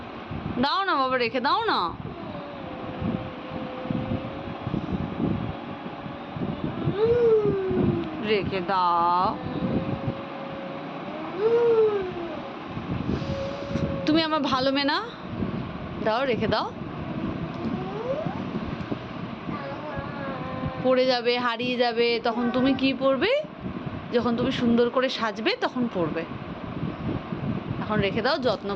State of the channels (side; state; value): both; identical; correlation 1.00